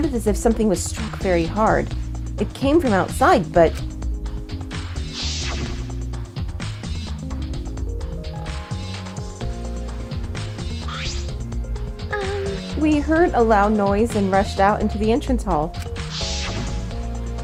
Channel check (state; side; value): identical; both; correlation 1.00